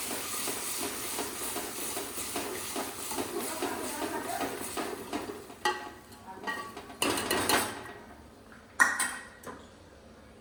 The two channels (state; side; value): identical; both; correlation 1.00